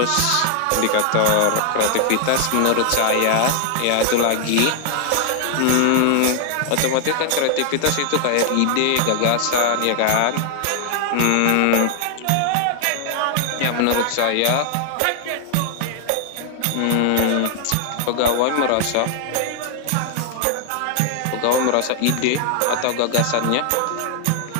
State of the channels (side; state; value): both; different; correlation 0.00